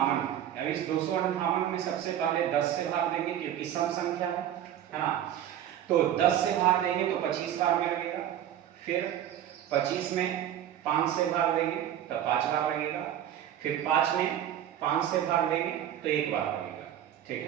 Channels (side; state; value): left; quieter; 10.9 dB